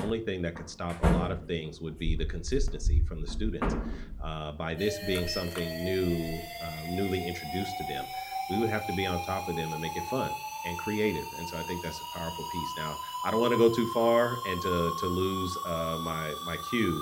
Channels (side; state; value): both; identical; correlation 1.00